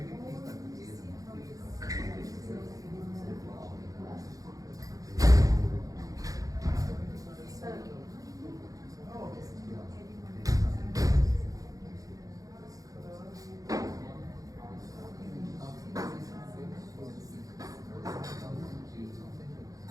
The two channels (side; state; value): left; late; 0.17 ms